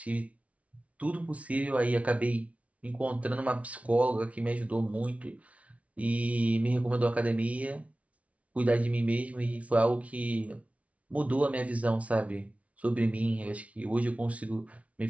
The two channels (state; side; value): late; left; 0.065 ms